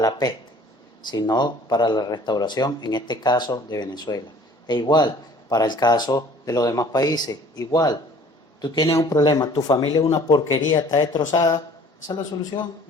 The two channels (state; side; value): normal; both; correlation 0.52